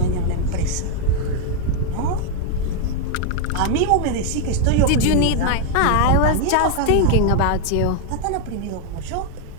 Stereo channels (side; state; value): both; different; correlation 0.00